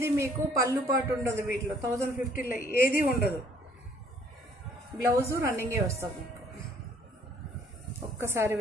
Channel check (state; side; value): normal; both; correlation 0.60